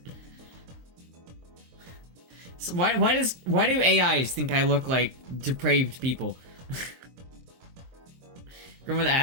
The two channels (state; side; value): late; left; 23 ms